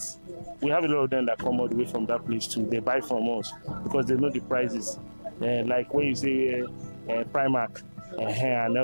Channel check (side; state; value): both; inverted; correlation -1.00